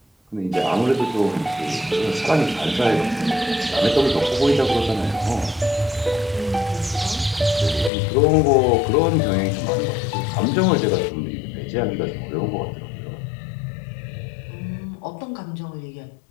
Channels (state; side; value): drops out; right; at 7.9 s